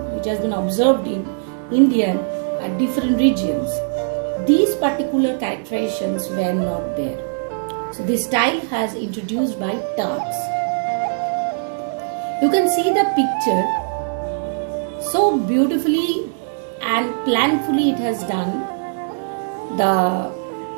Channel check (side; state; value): left; silent; digital silence